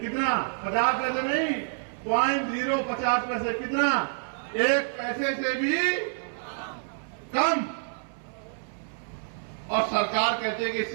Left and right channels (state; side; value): silent; left; 59 dB below the other